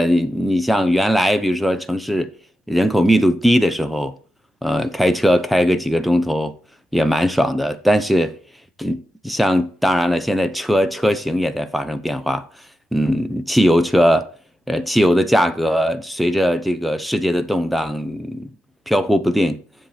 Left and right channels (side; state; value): both; normal; correlation 0.91